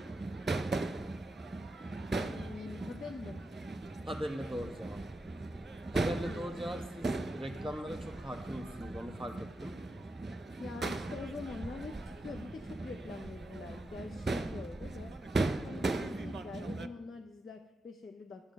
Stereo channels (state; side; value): normal; both; correlation 0.87